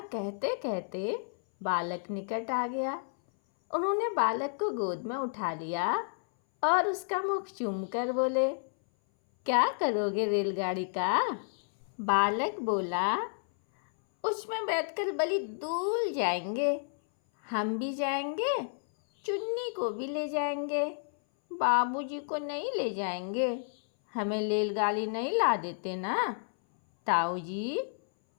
कहते कहते बालक निकट आ गया। उन्होंने बालक को गोद में उठा लिया और उसका मुख चूमकर बोले, क्या करोगे रेलगाड़ी का? बालक बोला, उसमें बैठकर बड़ी दूर जाएंगे। हम भी जाएंगे, चुन्नी को भी ले जाएंगे, बाबूजी को नहीं ले जाएंगे। हमें रेलगाड़ी नहीं ला देते ना? ताऊ जी,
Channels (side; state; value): right; silent; 57 dB below the other